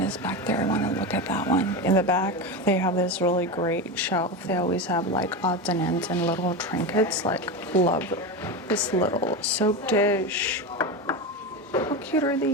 back there. I want to look at that one. In the back, they have this really great shelf. They always have like odds and ends and little trinkets. Like, love this little soap dish. How cute are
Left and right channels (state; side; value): normal; both; correlation 0.19